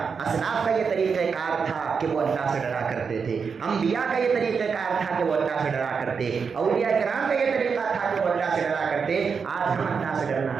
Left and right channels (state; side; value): quieter; left; 5.8 dB